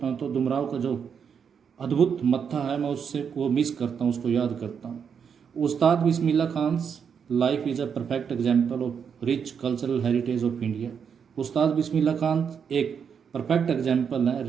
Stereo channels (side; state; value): left; quieter; 7.0 dB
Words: हूँ तो डुमराव का जो अद्भुत मत्था है मैं उससे वो मिस करता हूँ, उसको याद करता हूँ। Ustad Bismillah Khan's life is a perfect example of rich cultural heritage of India. Ustad Bismillah Khan एक परफेक्ट एग्जाम्पल है